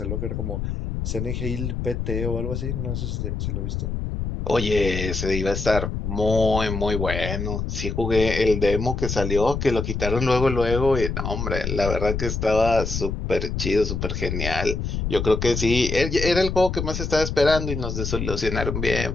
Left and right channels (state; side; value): noise; left; rumble, 3 dB below the sound